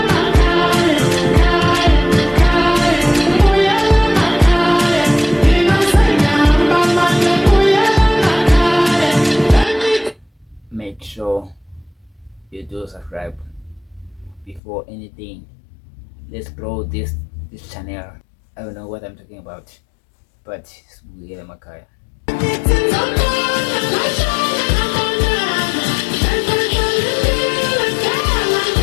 Make sure you do subscribe before anything. Let's grow this channel. I don't know what I'm talking about, but it's Emakhaya.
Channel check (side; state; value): right; drops out; at 14.6 s